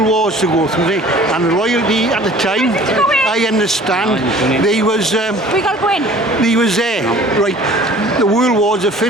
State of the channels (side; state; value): both; normal; correlation 0.49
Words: wars to go through, and the royalty at the time, I understand, they was We gotta go in. they was there, right? The world wars are